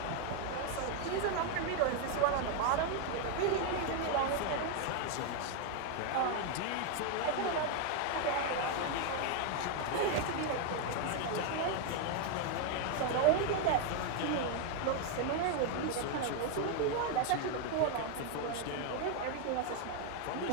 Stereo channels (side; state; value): both; different; correlation 0.01